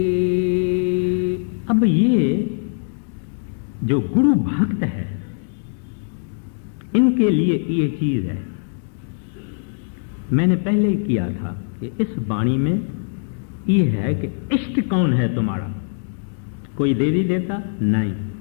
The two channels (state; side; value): silent; right; digital silence